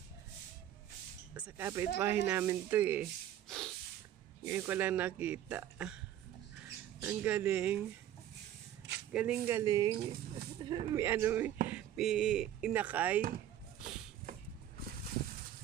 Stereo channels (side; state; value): left; quieter; 11.5 dB